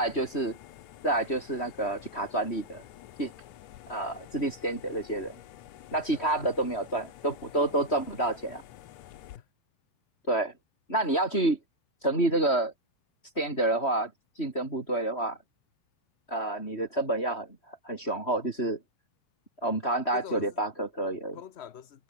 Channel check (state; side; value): late; right; 3.1 ms